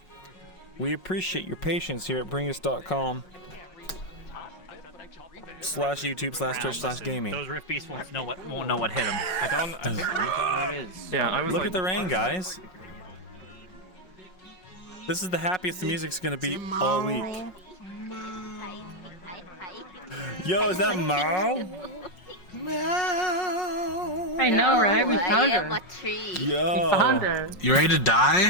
We appreciate your patience here at bringus.com /YouTube/Twitch/gaming. Those Rift Beasts won't know what hit them. I don't know what it is. Yeah, I was Look at the rain, guys. This is the happiest the music's gonna be all week. Yo, is that Mao? Meow. I know, right? We found I am her. a tree. We found her. You ready to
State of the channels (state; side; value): late; right; 5.5 ms